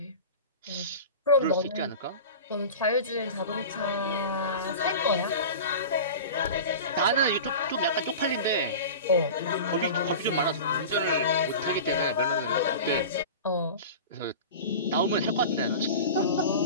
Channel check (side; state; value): both; inverted; correlation -0.32